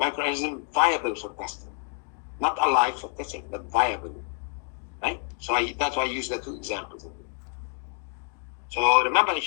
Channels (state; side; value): quieter; right; 38.6 dB